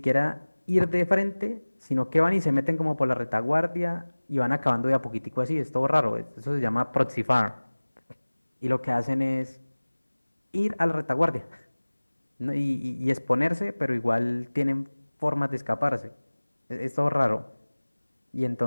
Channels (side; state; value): both; inverted; correlation -1.00